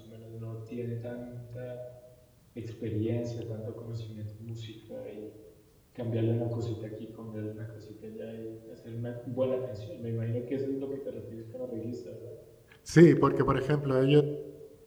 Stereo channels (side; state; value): both; identical; correlation 1.00